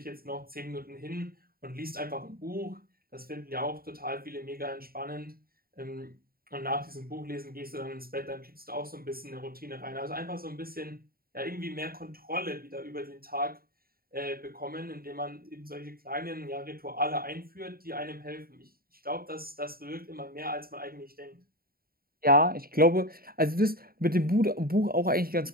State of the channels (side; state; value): left; late; 0.43 ms